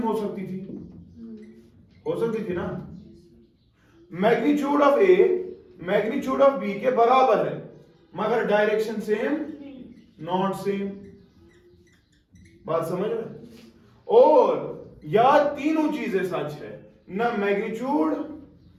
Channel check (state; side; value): identical; both; correlation 1.00